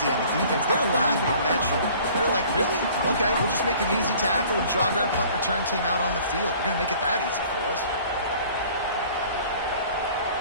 on the defense. They're laughing at that short. They're like, really? Okay, we'll just make an easy tackle and jog our punt return team out on the field. We're going to make it that easy for us.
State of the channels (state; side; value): inverted; both; correlation -0.50